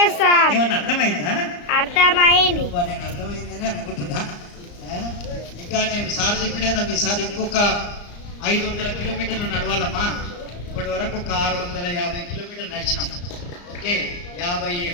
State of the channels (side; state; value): right; late; 34 ms